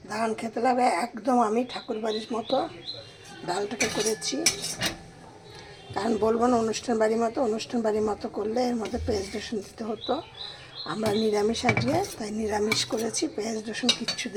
দারুণ খেতে লাগে একদম। আমি ঠাকুর বাড়ির মতো ডালটাকে করেছি, কারণ বলবো না অনুষ্ঠান বাড়ির মতো করলে এর মধ্যে পেঁয়াজ রসুন দিতে হতো। আমরা নিরামিষ আজকে, তাই নিরামিষ করেছি, পেঁয়াজ রসুন কিচ্ছু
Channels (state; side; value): identical; both; correlation 1.00